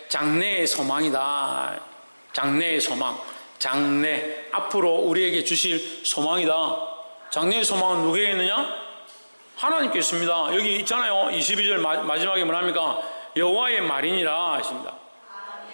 장래의 소망이다. 장래의 소망. 장래. 앞으로 우리에게 주실 소망이다. 장래의 소망은 누구에게 있느냐? 하나님께 있습니다. 여기 있잖아요. 22절 마지막에 뭐랍니까? 여호와의 말이니라 하십니다.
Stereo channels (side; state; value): both; inverted; correlation -1.00